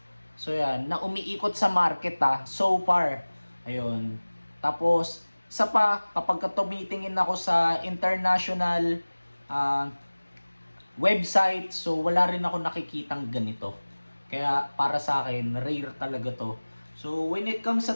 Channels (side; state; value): both; inverted; correlation -1.00